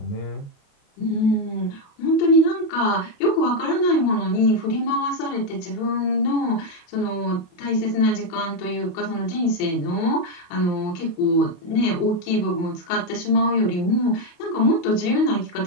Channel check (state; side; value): late; right; 29 ms